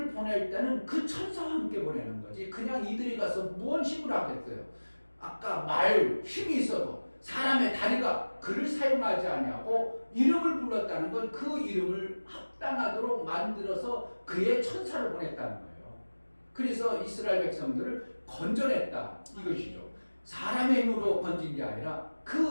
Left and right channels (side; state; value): both; inverted; correlation -1.00